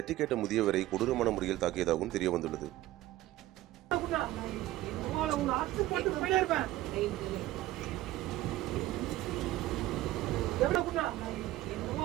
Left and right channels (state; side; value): quieter; left; 15.8 dB